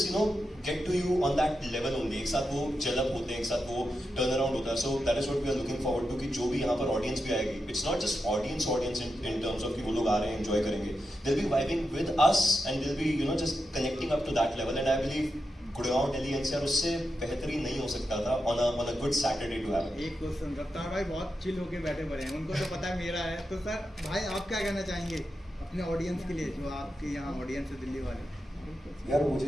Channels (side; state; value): both; normal; correlation 0.88